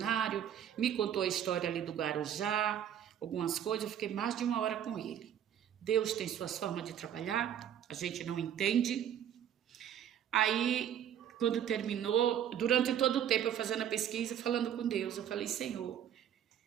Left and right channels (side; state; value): left; quieter; 9.8 dB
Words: me contou a história ali do Guarujá, algumas coisas. Eu fiquei mais de 1 hora com ele. Deus tem suas formas de trabalhar, a gente não entende. Aí, quando terminou, durante todo o tempo eu fazendo a pesquisa, falando com Deus, eu falei: Senhor,